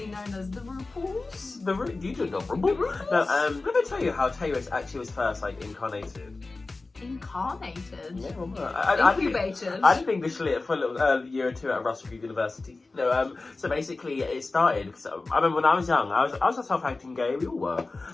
known as the RuPauls. You don't know RuPaul? No, let me tell you how Tayris actually was first, like, incarnated. Incarnated? Yeah, well, Incubated? I did English lit for a little year or two at Russell University. No, so basically it started, because I remember when I was young, I was a self-acting gay, we all were.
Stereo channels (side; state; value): right; quieter; 3.5 dB